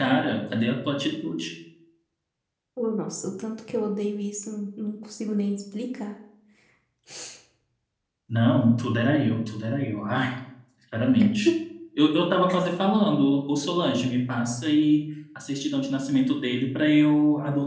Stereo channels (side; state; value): both; identical; correlation 1.00